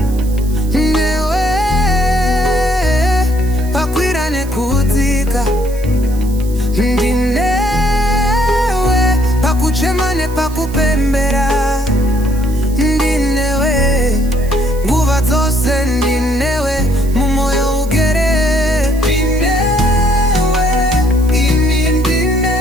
newe pakwira nekudzika, ndinewe pakuchema nepakupembera, ndinewe nguva dzose, ndinewe mumoyo ugere, ndinewe ini,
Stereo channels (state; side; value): noise; right; hiss, 19 dB below the sound